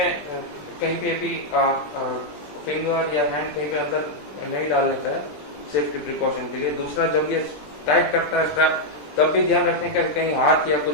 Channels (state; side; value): late; right; 20 ms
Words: कहीं पे भी फिंगर या हैंड कहीं पे अंदर नहीं डालने का है सेफ्टी प्रिकॉशन के लिए। दूसरा, जब ये टाइट करता है स्ट्रैप, तब भी ध्यान रखने का कहीं हाथ या